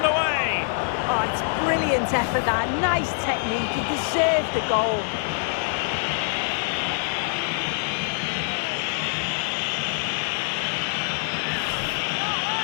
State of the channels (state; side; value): silent; right; 57 dB below the other